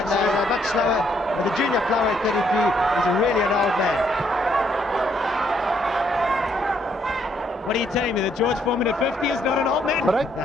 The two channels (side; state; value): both; normal; correlation 0.71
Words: they're much slower. But the junior flyweight 33 is really an old man. What are you telling me, that George Foreman at 50 is not an old man? Break.